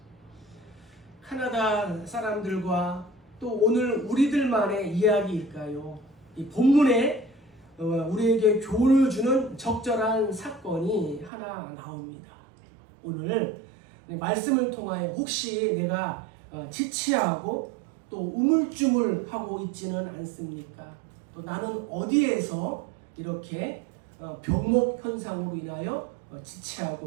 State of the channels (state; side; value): drops out; left; at 11.3 s